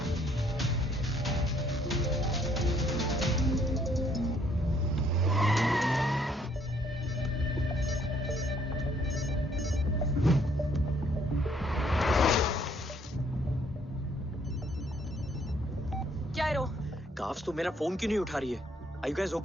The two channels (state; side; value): normal; both; correlation 0.65